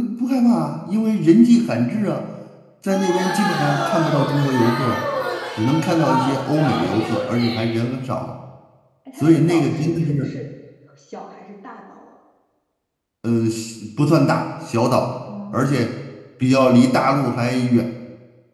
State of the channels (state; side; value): identical; both; correlation 1.00